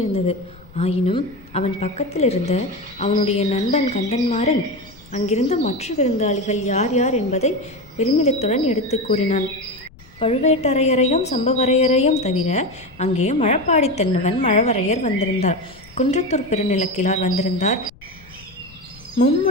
ஆயினும் அவன் பக்கத்தில் இருந்த அவனுடைய நண்பன் கந்தன்மாறன் அங்கிருந்த மற்ற விருந்தாளிகள் யார் யார் என்பதை பெருமிதத்துடன் எடுத்து கூறினான். பழுவேட்டரையரையும் சம்பவரையரையும் தவிர அங்கே மழப்பாடி தென்னவன் மழவரையர் வந்திருந்தார். குன்றத்தூர் பெருநிலக்கிழார் வந்திருந்தார்.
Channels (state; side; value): noise; left; rumble, 24 dB below the sound